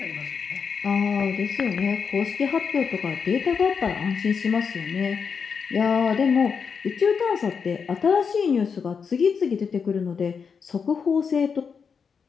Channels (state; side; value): quieter; right; 6.1 dB